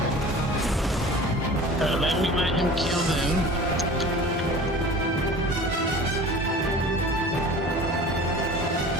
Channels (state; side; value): normal; both; correlation 0.41